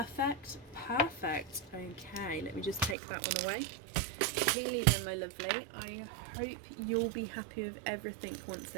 perfect. Okay, let me just take that one away. Keely then, my lovely, I hope you'll be happy with everything once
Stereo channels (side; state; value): left; drops out; at 3.0 s